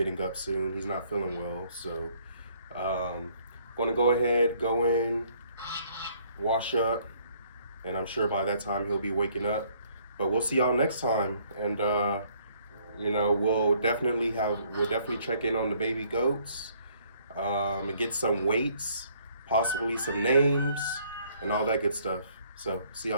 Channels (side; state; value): both; inverted; correlation -0.64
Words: up soon. He's not feeling well. So, gonna go ahead, go in, wash up, and I'm sure by that time he'll be waking up. But we'll see y'all next time. And, you know, we'll definitely check in on the baby goats, and get some weights, possibly some names, and all that good stuff. So, see